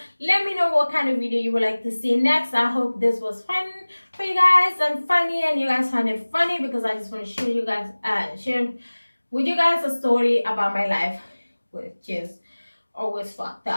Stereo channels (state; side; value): inverted; both; correlation -1.00